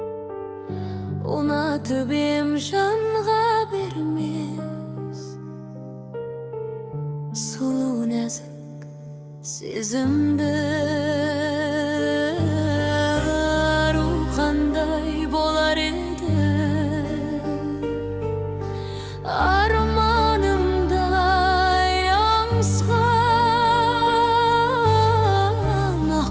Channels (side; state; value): both; identical; correlation 1.00